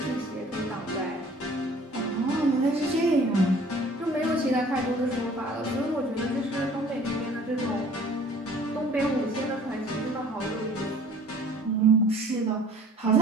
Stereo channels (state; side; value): normal; both; correlation 0.52